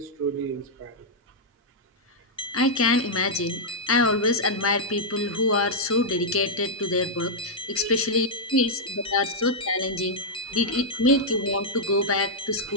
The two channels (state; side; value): normal; both; correlation -0.07